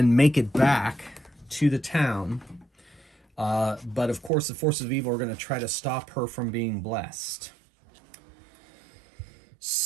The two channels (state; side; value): drops out; left; at 4.3 s